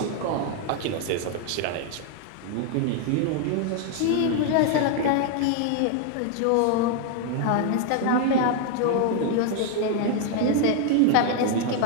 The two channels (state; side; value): different; both; correlation 0.00